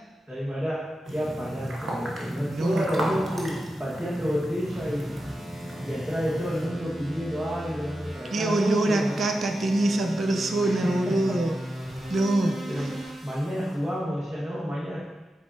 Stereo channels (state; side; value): normal; both; correlation 0.90